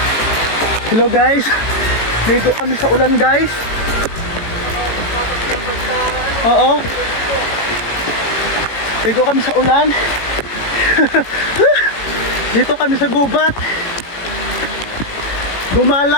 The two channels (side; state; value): right; late; 18 ms